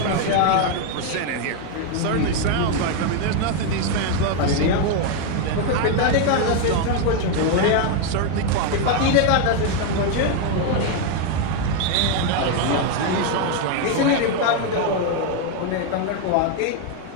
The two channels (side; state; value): both; different; correlation 0.01